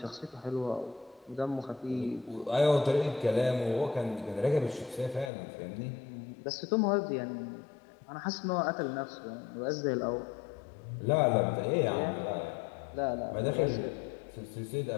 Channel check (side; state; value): right; drops out; at 5.3 s